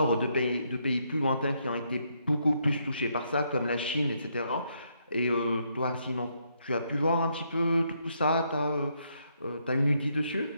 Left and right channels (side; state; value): both; inverted; correlation -0.75